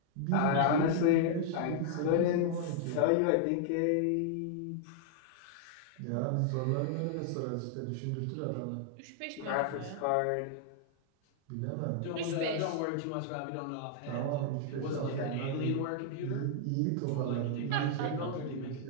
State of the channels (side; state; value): both; different; correlation -0.01